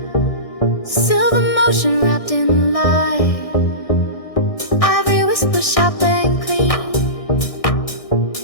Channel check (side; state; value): right; late; 1.6 ms